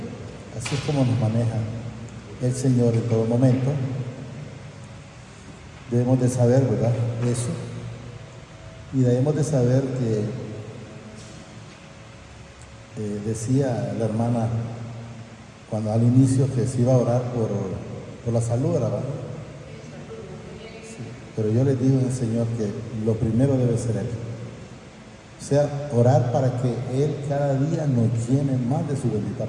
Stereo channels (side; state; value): both; identical; correlation 1.00